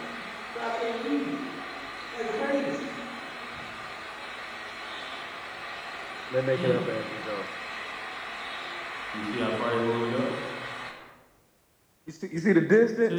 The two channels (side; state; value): both; identical; correlation 1.00